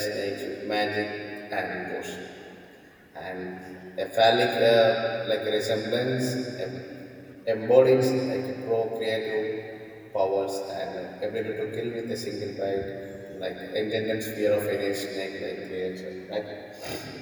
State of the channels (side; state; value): both; identical; correlation 1.00